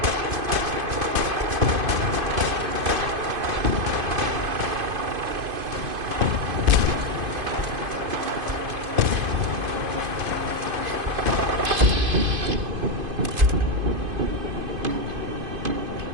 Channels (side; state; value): left; late; 2.5 ms